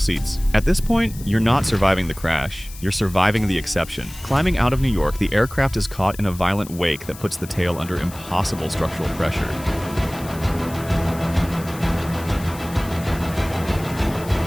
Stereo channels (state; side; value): noise; left; hiss, 17 dB below the sound